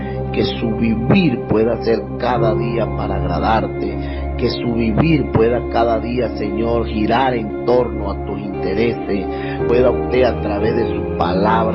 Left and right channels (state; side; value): identical; both; correlation 1.00